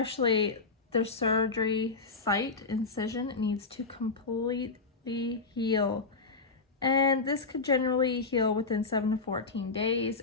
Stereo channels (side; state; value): right; quieter; 4.1 dB